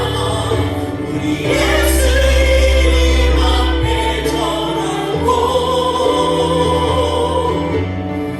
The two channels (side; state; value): both; identical; correlation 1.00